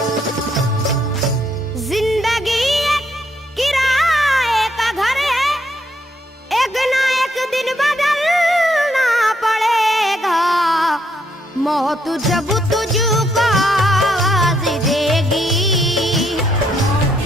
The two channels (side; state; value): both; normal; correlation 0.74